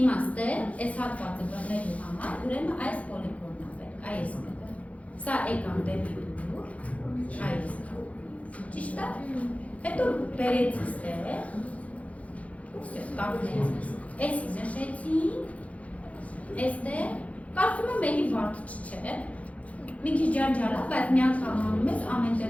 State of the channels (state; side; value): late; right; 0.066 ms